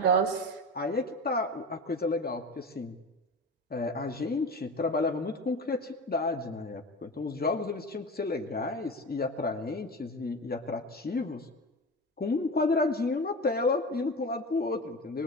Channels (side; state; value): both; normal; correlation 0.28